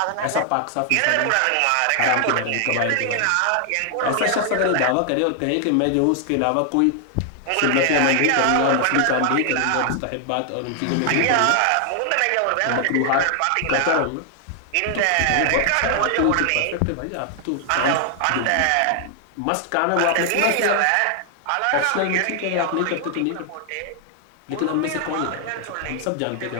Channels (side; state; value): both; different; correlation 0.00